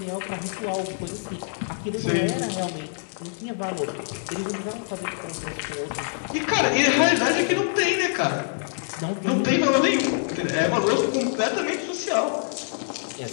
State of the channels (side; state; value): right; silent; digital silence